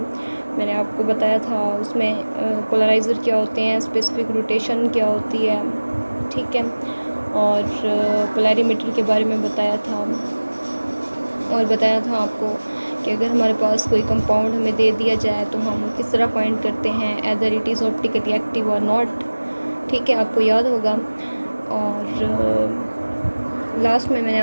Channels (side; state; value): both; inverted; correlation -1.00